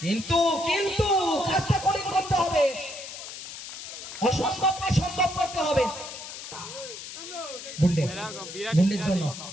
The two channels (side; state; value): left; noise; hiss, 11 dB below the sound